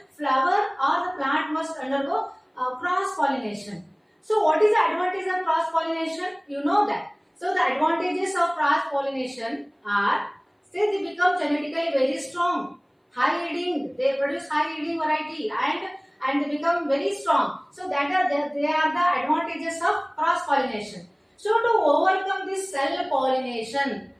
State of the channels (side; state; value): both; identical; correlation 1.00